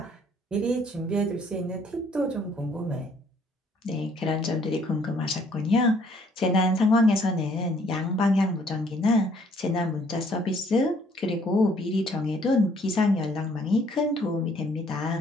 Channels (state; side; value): normal; both; correlation 0.63